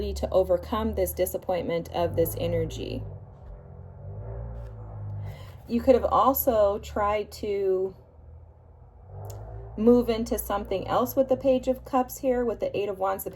to overcome this disappointment of this energy. You could have also tried to move into something else with the Page of Cups here, with the Eight of Wands. The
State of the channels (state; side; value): identical; both; correlation 1.00